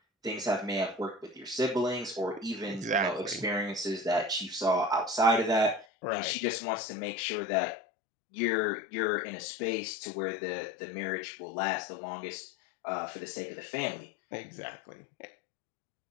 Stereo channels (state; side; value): drops out; right; at 5.9 s